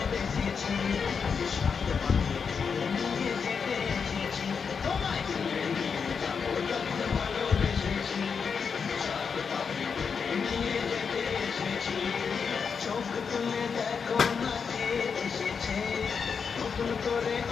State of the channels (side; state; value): right; quieter; 6.0 dB